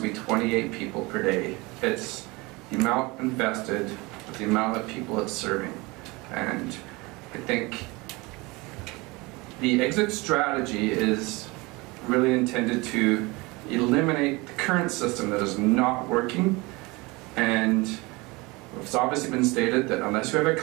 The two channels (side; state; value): left; quieter; 24.3 dB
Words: 28 people per day. It's the amount invested with the amount of people it's serving. And I think the exit strategy is really intended to eliminate the current system that is not working. And it's obviously been stated that unless you have a